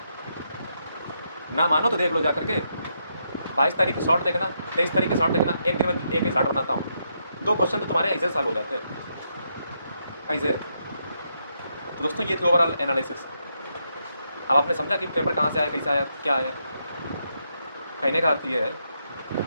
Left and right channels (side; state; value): both; inverted; correlation -0.79